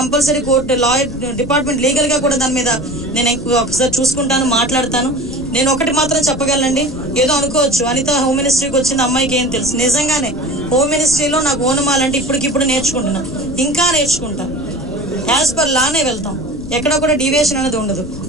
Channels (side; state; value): left; noise; rumble, 13 dB below the sound